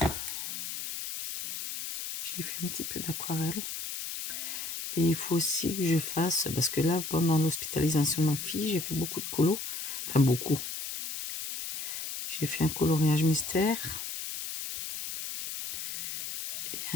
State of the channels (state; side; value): noise; left; hiss, 6 dB below the sound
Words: J'ai fait un petit peu d'aquarelle. Et il faut aussi que je fasse, parce que là, pendant l'hospitalisation de ma fille, j'ai fait beaucoup de colo. Enfin, beaucoup. J'ai fait un coloriage mystère. Et